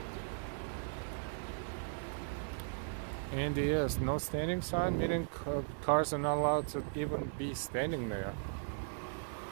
And yes, no standing sign, meaning cars are not allowed to even be standing there.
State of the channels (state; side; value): silent; left; digital silence